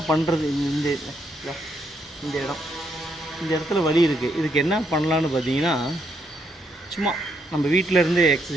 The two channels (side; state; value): both; normal; correlation 0.76